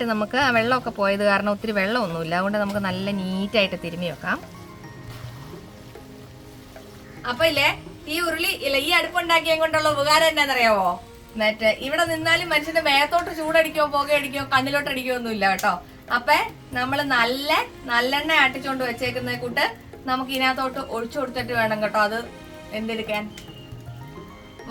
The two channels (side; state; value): both; identical; correlation 1.00